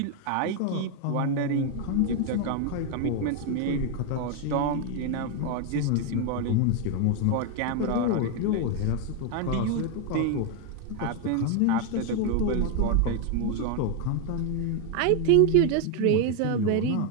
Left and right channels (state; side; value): different; both; correlation 0.01